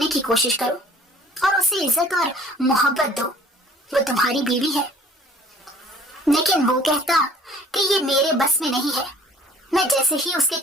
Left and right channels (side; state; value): both; normal; correlation 0.53